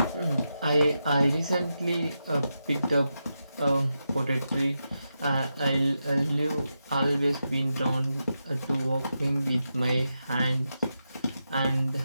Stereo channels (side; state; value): both; inverted; correlation -0.88